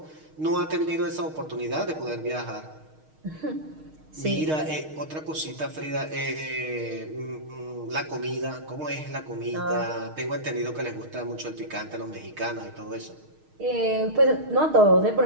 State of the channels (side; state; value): left; late; 6.4 ms